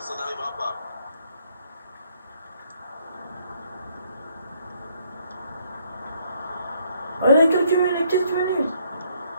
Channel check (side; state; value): both; inverted; correlation -0.68